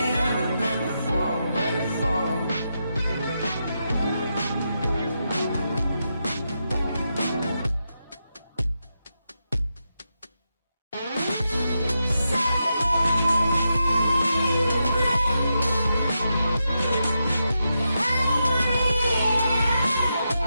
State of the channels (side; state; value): both; inverted; correlation -0.86